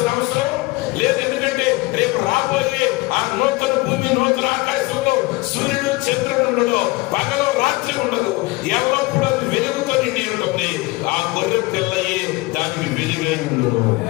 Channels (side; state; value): right; quieter; 22.4 dB